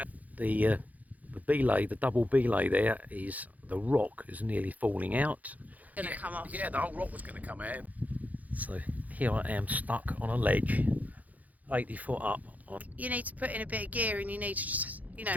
The belay, the double belay there, is the rock is nearly falling out. Gonna come off. Yeah, the whole rock was going to come out. So here I am stuck on a ledge, 80 foot up. You need to put in a bit of gear, and you need to just, you know,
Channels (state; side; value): late; left; 0.078 ms